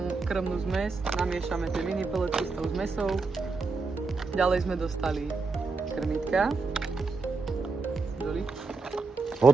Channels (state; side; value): quieter; left; 4.1 dB